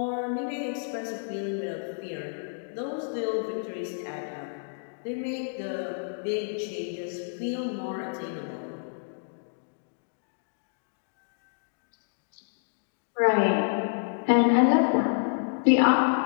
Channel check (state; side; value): silent; right; digital silence